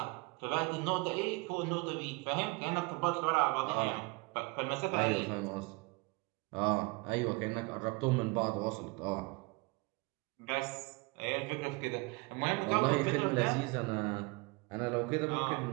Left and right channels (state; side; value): quieter; left; 26.6 dB